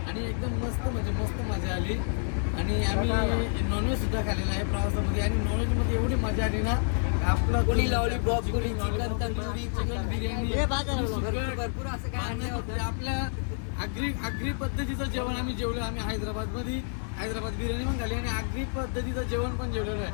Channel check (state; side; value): silent; right; digital silence